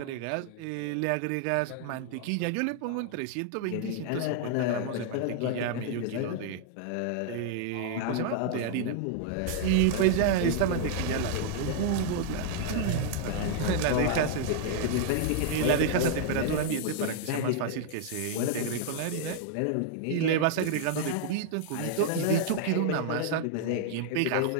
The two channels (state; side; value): different; both; correlation -0.01